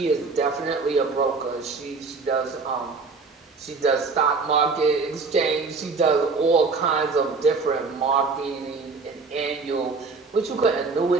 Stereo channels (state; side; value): quieter; left; 4.3 dB